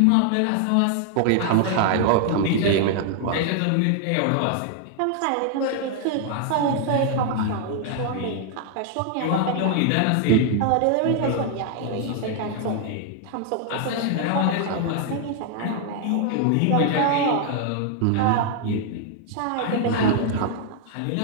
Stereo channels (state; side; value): different; both; correlation 0.00